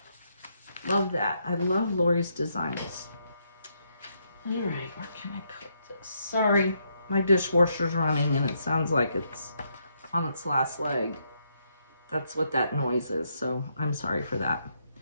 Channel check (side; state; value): both; inverted; correlation -0.77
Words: Love that. I love Lori's designs. All right, where can I put this? Sorry, my dishwasher's running and it sounds like it's on its last leg. That's what that noise is, so I'm sorry for that.